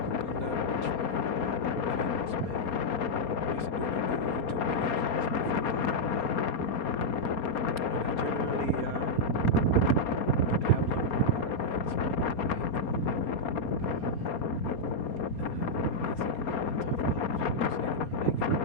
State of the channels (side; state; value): right; late; 4.3 ms